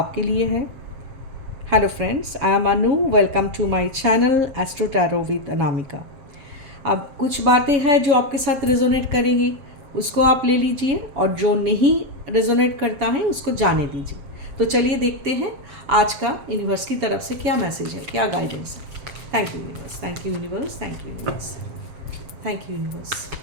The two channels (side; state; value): left; late; 7.5 ms